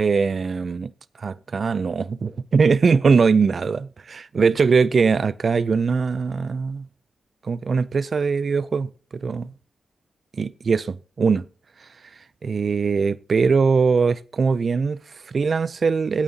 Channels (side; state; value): left; quieter; 4.8 dB